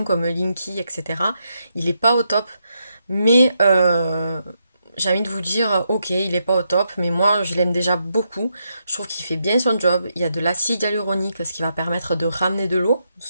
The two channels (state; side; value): inverted; both; correlation -0.81